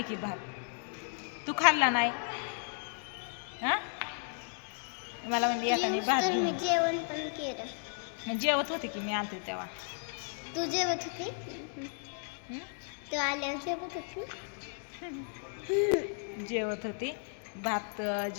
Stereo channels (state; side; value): silent; right; 55 dB below the other